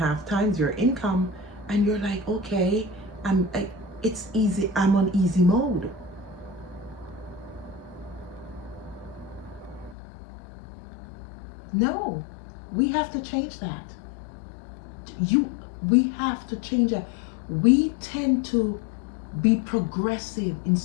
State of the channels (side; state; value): right; drops out; at 10.0 s